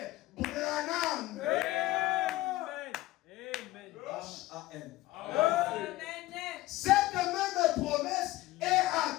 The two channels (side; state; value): right; quieter; 17.7 dB